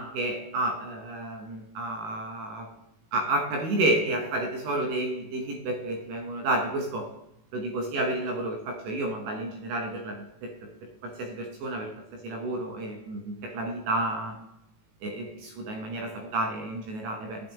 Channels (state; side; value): late; left; 19 ms